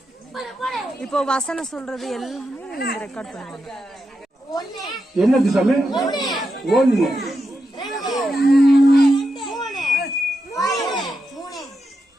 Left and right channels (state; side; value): normal; both; correlation 0.86